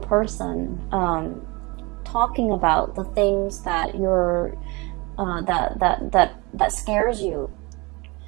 talking about the things that you're that scares you.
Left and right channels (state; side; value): quieter; left; 25.9 dB